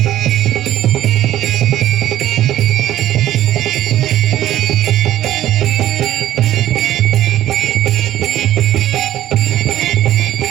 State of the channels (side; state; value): left; quieter; 13.0 dB